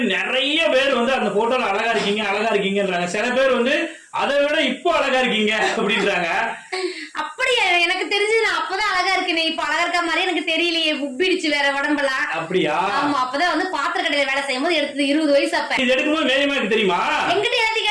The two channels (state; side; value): identical; both; correlation 1.00